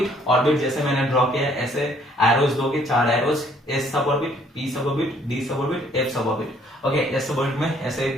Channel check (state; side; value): normal; both; correlation 0.63